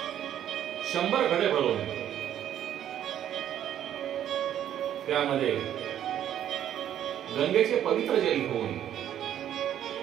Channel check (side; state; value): left; quieter; 10.7 dB